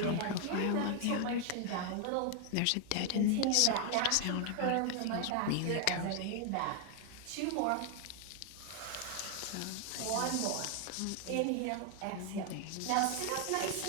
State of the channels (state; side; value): different; both; correlation 0.00